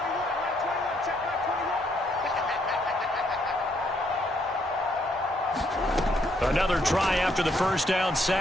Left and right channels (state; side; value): normal; both; correlation 0.72